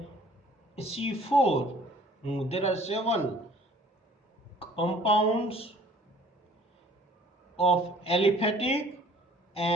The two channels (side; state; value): both; normal; correlation 0.54